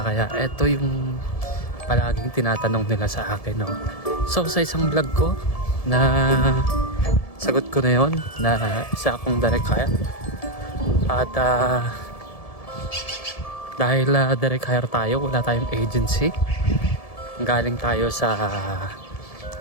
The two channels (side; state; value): right; late; 1.7 ms